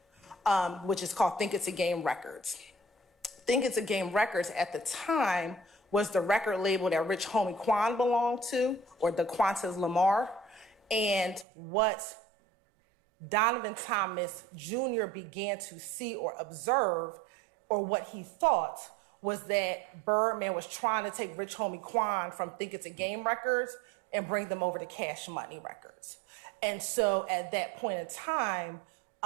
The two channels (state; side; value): drops out; left; at 11.5 s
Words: which is called Think It's a Game Records. Think It's a Game Records at the time was the record label that Rich Homie Quan belonged to, or the Qantas Lamar. And what Donovan Thomas Jr. began to see or observe, or what he thought, was that Birdman was trying to take Rich Homie Quan from Think It's a Game Records and bring them over to Cash Money Records. And so at that point in time,